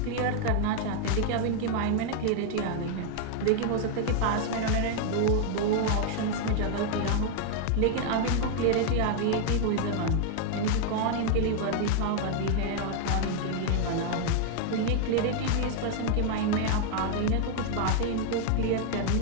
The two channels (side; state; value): both; different; correlation 0.00